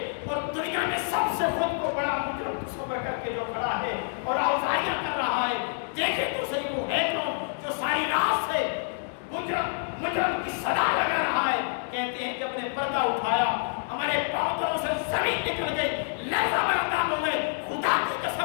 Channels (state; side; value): silent; right; digital silence